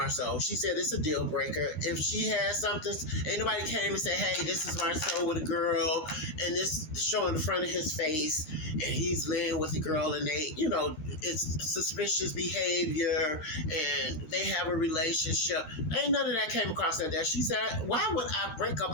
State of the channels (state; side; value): late; right; 13 ms